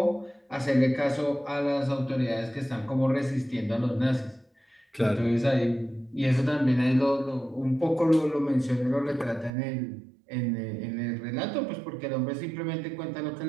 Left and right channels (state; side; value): drops out; left; at 9.5 s